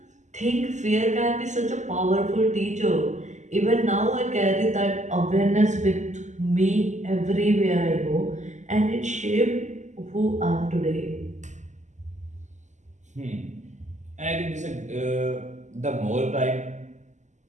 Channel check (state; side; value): late; left; 0.34 ms